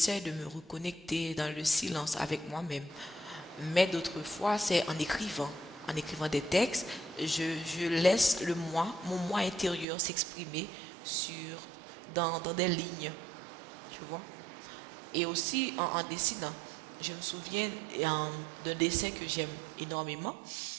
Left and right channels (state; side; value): drops out; left; at 9.9 s